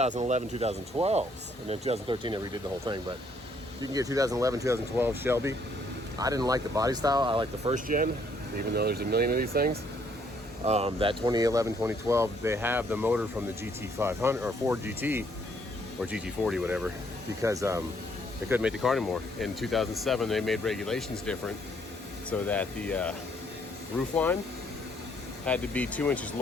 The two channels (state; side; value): normal; both; correlation 0.68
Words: 2012s. And then 2013, they redid the whole thing. But you can get 2011, 2012 Shelby. I didn't like the body style. I like the first gen, even though there's a million of these things. That 2011, 2012, they have the motor from the GT500 or Ford GT or GT40, whatever, because they couldn't make the car anymore. In 2007, they made regulations different so that the roof line had to be 2 inches